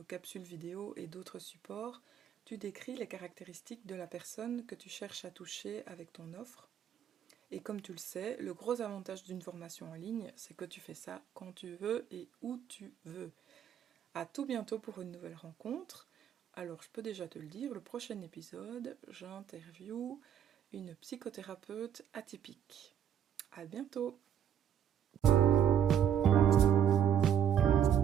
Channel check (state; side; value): quieter; left; 9.3 dB